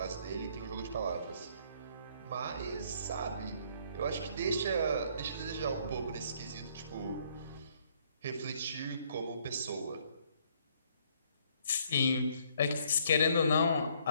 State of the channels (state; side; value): inverted; both; correlation -0.65